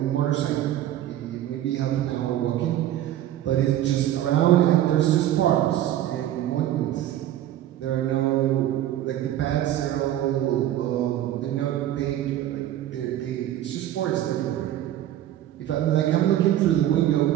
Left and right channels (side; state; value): left; quieter; 12.7 dB